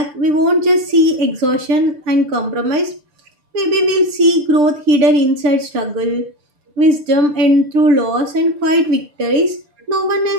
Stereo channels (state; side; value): late; left; 6.7 ms